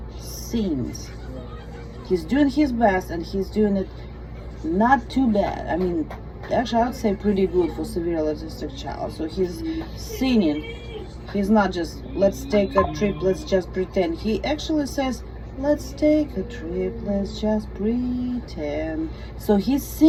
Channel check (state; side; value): identical; both; correlation 1.00